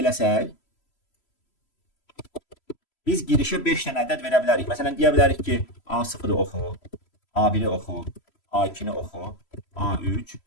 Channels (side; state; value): right; late; 3.0 ms